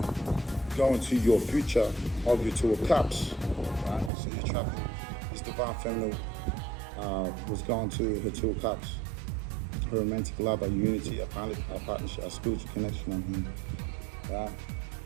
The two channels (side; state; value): left; drops out; at 4.1 s